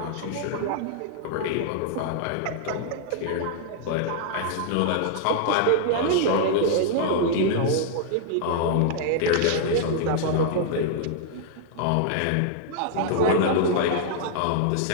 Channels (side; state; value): both; different; correlation -0.01